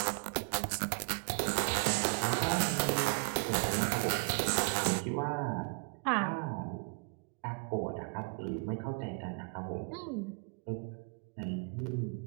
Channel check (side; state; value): left; quieter; 36.9 dB